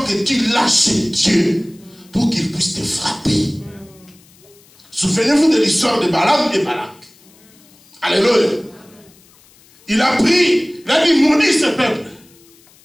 que tu lâches Dieu pour qu'il puisse te frapper. Souvenez-vous de l'histoire de Balaam et Balak. Alléluia. Il a pris, il a dit, maudis ce peuple.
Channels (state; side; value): noise; left; hiss, 28 dB below the sound